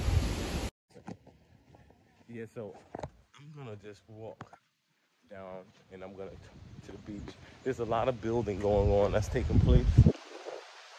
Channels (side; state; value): both; identical; correlation 1.00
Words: Yeah, so I'm gonna just walk down and I'm gonna to the beach. There's a lot of building going on that's taking place.